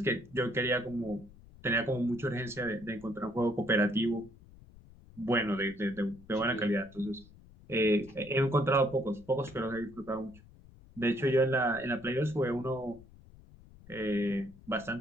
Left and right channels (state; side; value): noise; left; rumble, 22 dB below the sound